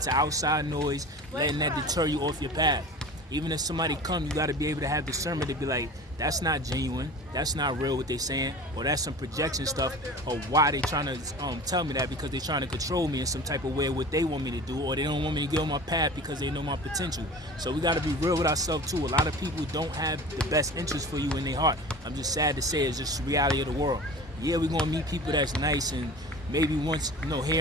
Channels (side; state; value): both; normal; correlation 0.38